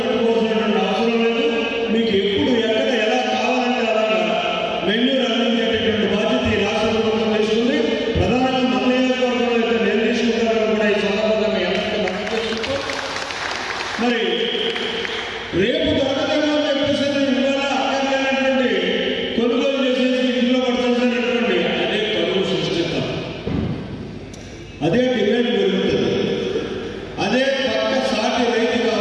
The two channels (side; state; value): both; identical; correlation 1.00